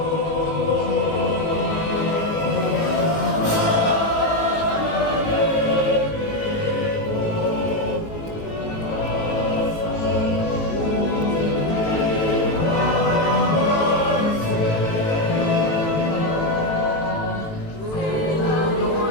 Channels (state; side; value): late; right; 18 ms